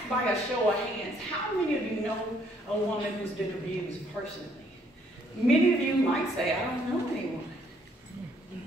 by a show of hands, how many of you know a woman who's been abused personally? Many of you might say, I don't know anyone.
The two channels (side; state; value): both; normal; correlation 0.67